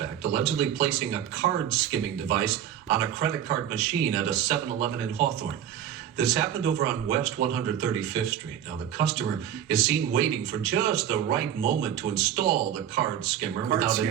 allegedly placing a card skimming device on a credit card machine at a 7-Eleven in Hawthorne. This happened over on West 135th Street. Now the customer is seen waiting for just the right moment to install the card skimmer without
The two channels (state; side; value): quieter; left; 10.1 dB